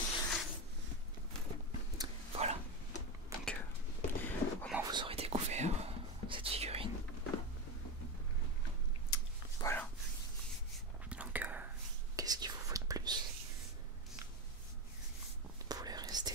Voilà, donc au moins vous aurez découvert cette figurine. Voilà, donc qu'est-ce qu'il vous faut de plus? Vous voulez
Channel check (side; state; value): both; normal; correlation 0.16